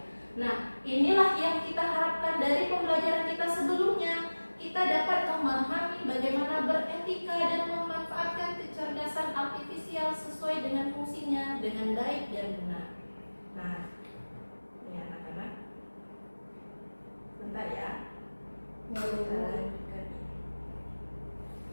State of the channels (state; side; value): inverted; both; correlation -1.00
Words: Nah, inilah yang kita harapkan dari pembelajaran kita sebelumnya. Kita dapat memahami bagaimana beretika dan memanfaatkan kecerdasan artifisial sesuai dengan fungsinya dengan baik dan benar. Nah, ini anak-anak, bentar ya. Kita lanjutkan.